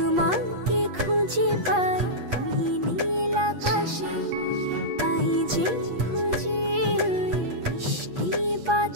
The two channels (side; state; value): left; late; 8.4 ms